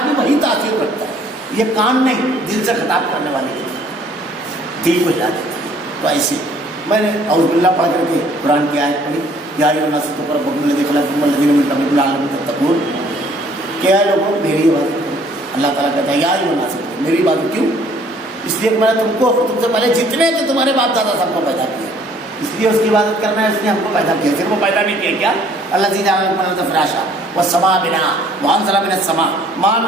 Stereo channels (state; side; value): normal; both; correlation 0.59